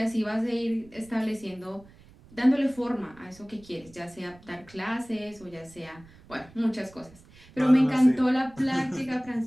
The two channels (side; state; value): right; noise; rumble, 24 dB below the sound